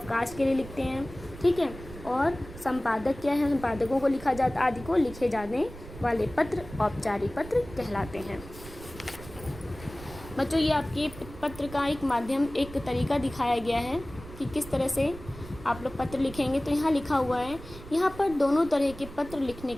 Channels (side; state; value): right; noise; rumble, 15 dB below the sound